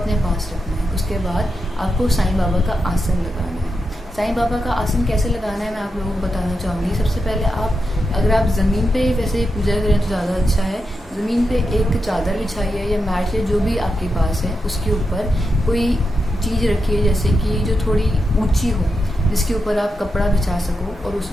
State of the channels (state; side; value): normal; both; correlation 0.87